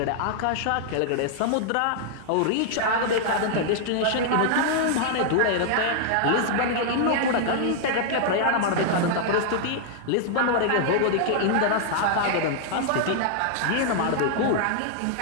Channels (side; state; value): both; different; correlation -0.01